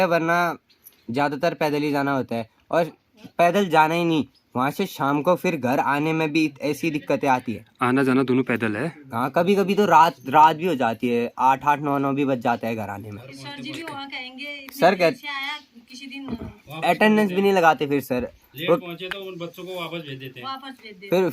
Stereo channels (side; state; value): both; identical; correlation 1.00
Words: वरना ज़्यादातर पैदल ही जाना होता है। और पैदल जाना ही नहीं, वहाँ से शाम को फिर घर आने में भी ऐसी दिक्कतें आती है। आना जाना दोनों पैदल है? हाँ, कभी कभी तो रात भी हो जाती है, 8-9 भी बज जाता है घर आने में। सर जी भी वहाँ कहेंगे सर कहते आया किसी दिन अटेंडेंस भी नहीं लगाते फिर सर। लेट पहुंचे तो उन बच्चों को वापस भेज देते हैं। वापस भेज दे।